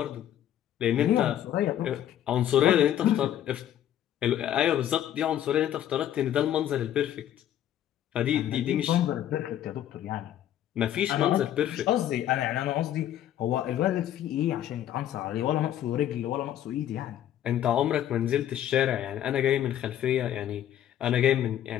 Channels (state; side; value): quieter; right; 11.3 dB